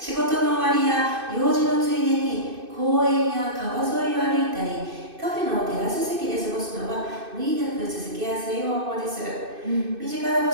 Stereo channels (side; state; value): left; late; 2.6 ms